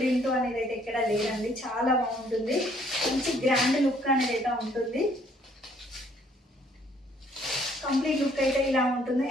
అనేది అయితే ఎక్కడ లేదండి, చాలా బాగుంటుంది. మంచి గ్రాండ్ లుక్ అనేది అయితే ఉంటుంది. కంప్లీట్ లుక్ అయితే ఇలా ఉంటుంది.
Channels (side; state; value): both; normal; correlation 0.63